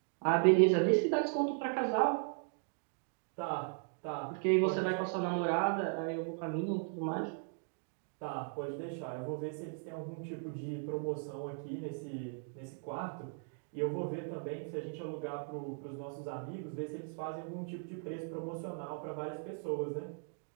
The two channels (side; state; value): left; silent; 53 dB below the other